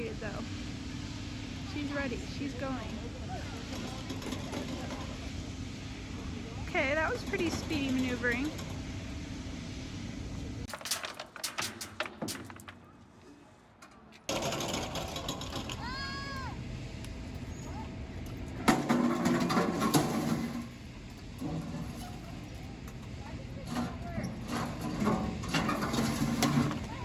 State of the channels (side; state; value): both; identical; correlation 1.00